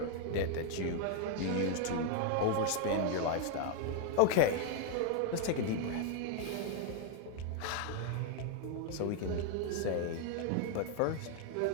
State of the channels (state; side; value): different; both; correlation 0.00